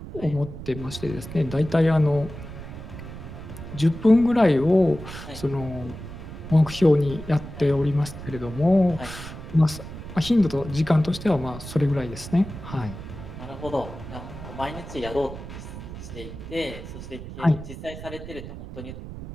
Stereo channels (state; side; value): noise; right; rumble, 11 dB below the sound